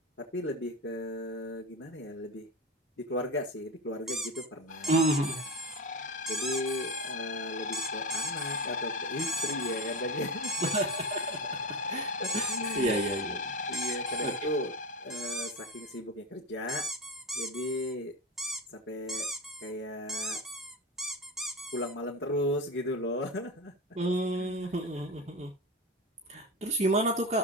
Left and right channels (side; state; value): both; normal; correlation 0.21